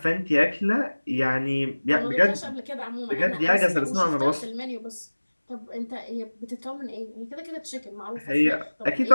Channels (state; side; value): inverted; both; correlation -1.00